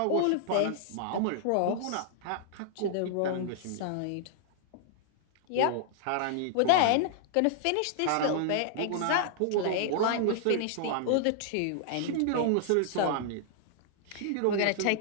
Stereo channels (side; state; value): both; different; correlation -0.01